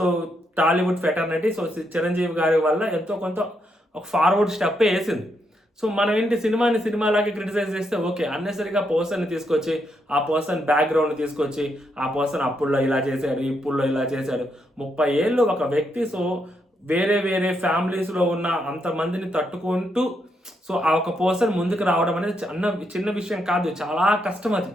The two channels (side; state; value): both; normal; correlation 0.79